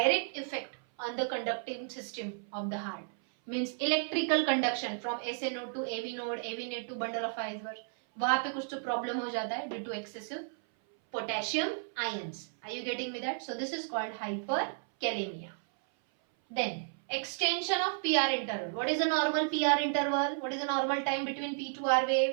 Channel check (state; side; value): silent; left; 56 dB below the other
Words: effect on the conducting system of the heart. Means electrical conduction from SA node to AV node to bundle of fibers. वहां पे कुछ तो problem हो जाता है due to excessive potassium ions. Are you getting me that? So this is called hyperkalemia. Then extension of PR interval. What is a normal PR interval? What is the normal time between P to R